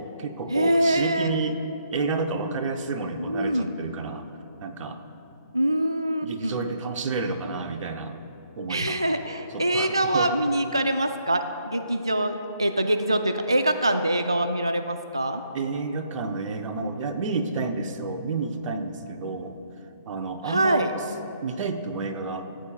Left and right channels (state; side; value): inverted; both; correlation -0.73